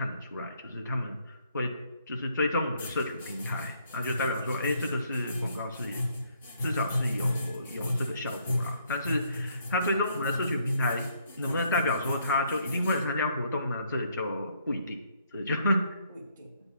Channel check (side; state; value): both; inverted; correlation -0.69